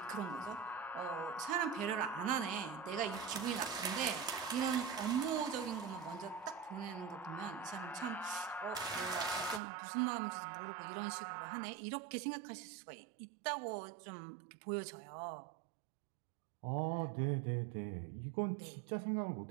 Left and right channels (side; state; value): left; drops out; at 9.6 s